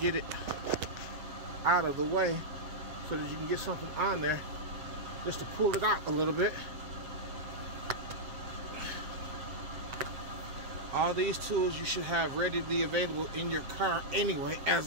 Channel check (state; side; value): late; left; 7.4 ms